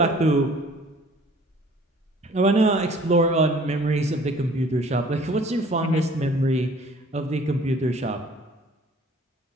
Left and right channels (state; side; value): normal; both; correlation 0.53